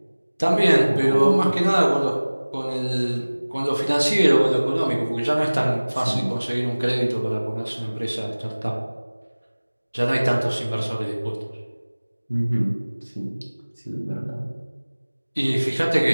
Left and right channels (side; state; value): both; inverted; correlation -1.00